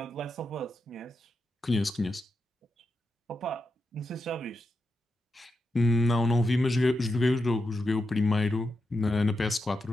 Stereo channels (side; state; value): both; normal; correlation 0.87